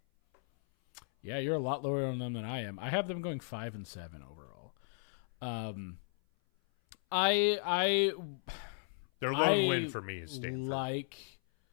Yeah, you're a lot lower on them than I am. I have them going 5-7 overall. Their lone win for me is Stanford.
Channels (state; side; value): silent; right; 54 dB below the other